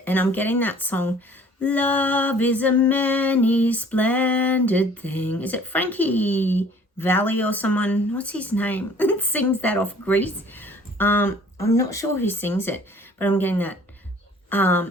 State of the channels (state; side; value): normal; both; correlation 0.53